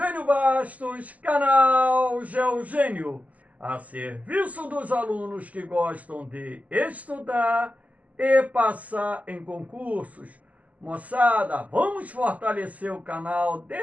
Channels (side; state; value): left; late; 0.074 ms